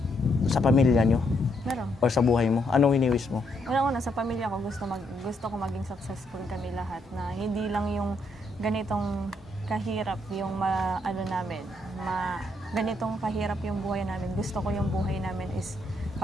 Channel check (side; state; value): both; normal; correlation 0.75